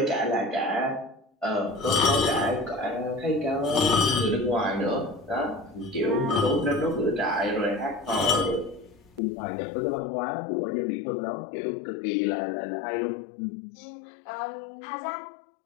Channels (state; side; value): drops out; right; at 9.2 s